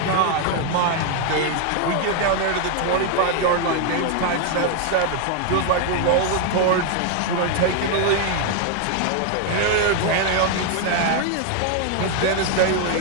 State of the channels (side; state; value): both; different; correlation 0.00